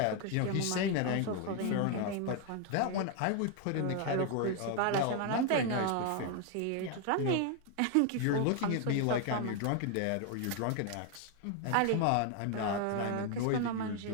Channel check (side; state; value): both; different; correlation 0.01